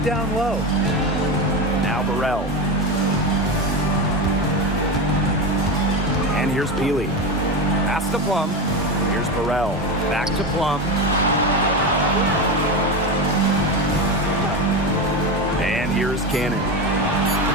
down low. Now Burrell. And here's Peely. Pass to Plum. Here's Burrell. Back to Plum. And here's Cannon.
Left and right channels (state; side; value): normal; both; correlation 0.18